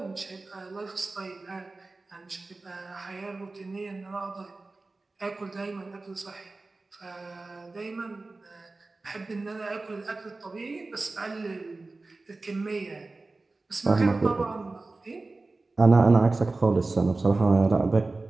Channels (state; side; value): quieter; left; 3.4 dB